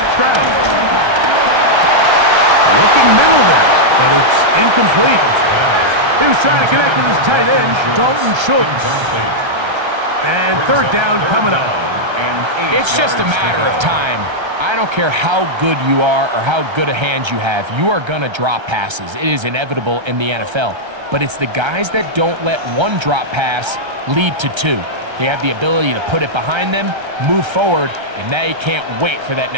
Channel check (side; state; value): left; late; 1.3 ms